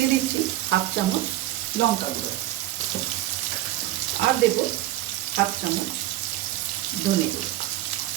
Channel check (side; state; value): left; quieter; 15.1 dB